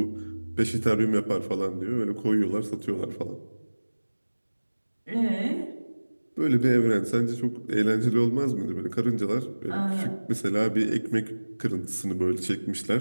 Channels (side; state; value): both; inverted; correlation -1.00